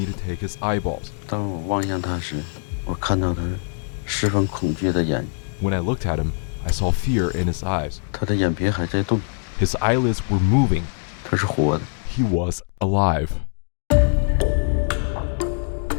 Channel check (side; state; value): right; silent; digital silence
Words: to take his eyeballs. 当我望向他时，我看到他十分恐惧的眼。 When I looked at him, I saw fear in his eyes. 他的眼皮还在动。 His eyelids were moving. 他是活的。 He was alive.